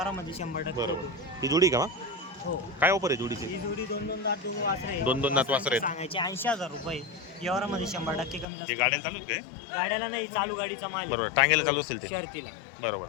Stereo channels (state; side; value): drops out; right; at 8.5 s